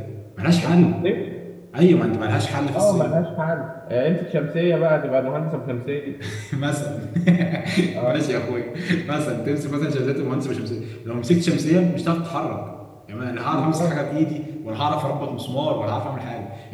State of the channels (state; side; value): identical; both; correlation 1.00